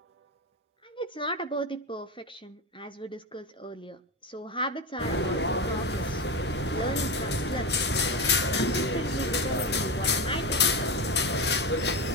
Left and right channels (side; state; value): both; normal; correlation 0.18